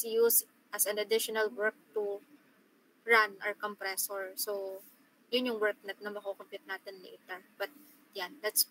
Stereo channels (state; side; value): identical; both; correlation 1.00